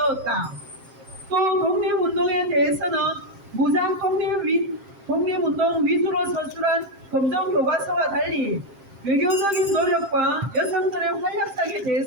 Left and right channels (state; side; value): late; left; 7.5 ms